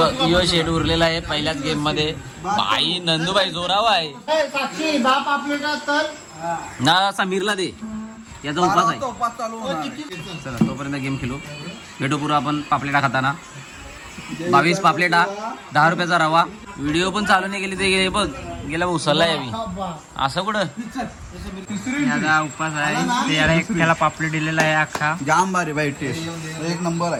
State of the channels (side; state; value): both; identical; correlation 1.00